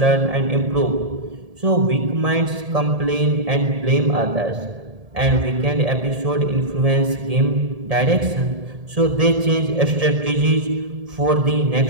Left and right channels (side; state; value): left; late; 1.7 ms